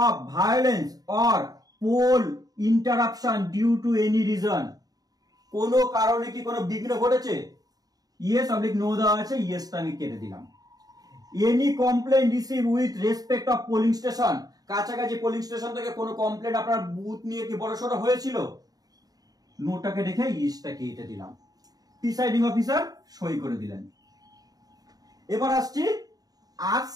of violence or poll interruption due to any reason, কোন কারণে কি কোনো বিঘ্ন ঘটেছে, ইয়েস অবলিক নো দেওয়া আছে, ইয়েসটা আমি কেটে দিলাম। Any complain receive with respect of polling station, কাছাকাছি পোলিং স্টেশন থেকে কোনো কমপ্লেন আপনার বুথ নিয়ে কি বড়সড় হয়েছিল, নোটাকে রেখে ইয়েসটা কেটে দিলাম। প্রিসাইডিং অফিসার সই করে দিলেন। এবার আসছি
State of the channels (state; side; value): late; left; 0.18 ms